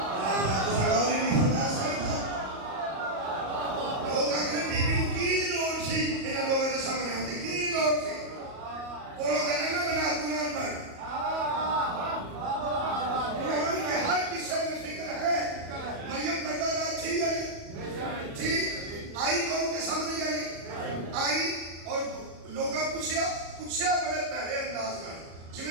پوچھیا بڑے پہلے انداز میں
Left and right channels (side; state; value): left; late; 37 ms